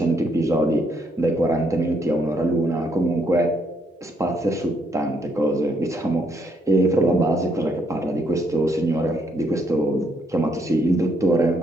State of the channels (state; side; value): normal; both; correlation 0.72